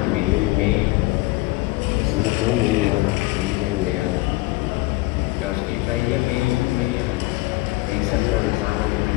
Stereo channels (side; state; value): right; quieter; 20.9 dB